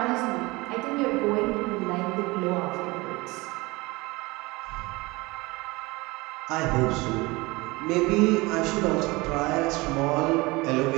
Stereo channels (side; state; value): left; quieter; 23.0 dB